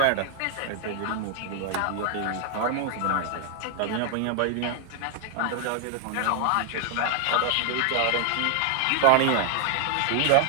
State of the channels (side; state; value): both; different; correlation 0.00